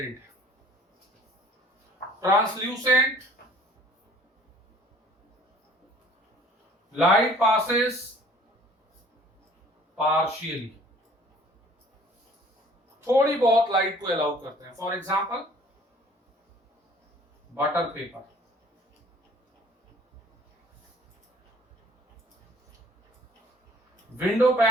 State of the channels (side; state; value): both; normal; correlation 0.54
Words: है। ट्रांसल्यूसेंट, लाइट पासेस पार्शियली, थोड़ी बहुत लाइट को अलाउ करते हैं। For example butter paper, window